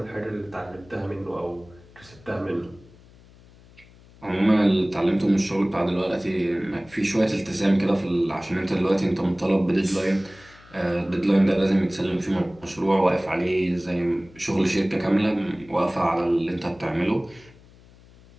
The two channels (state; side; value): noise; left; hum, 25 dB below the sound